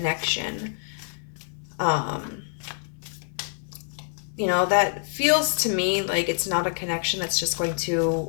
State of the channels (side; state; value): right; silent; 61 dB below the other